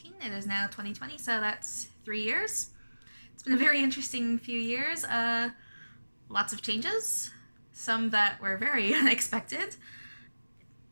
It is now 2020, so that's 3 years. It's been a very interesting few years. Lots of changes, some that were very unexpected,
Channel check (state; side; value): inverted; both; correlation -1.00